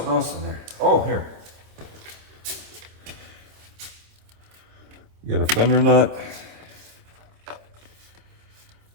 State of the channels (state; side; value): late; left; 26 ms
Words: else in there. Oh, here. You got a fender nut.